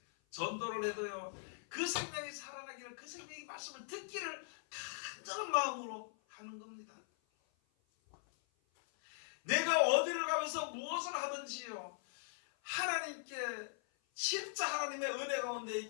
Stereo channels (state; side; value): silent; right; 51 dB below the other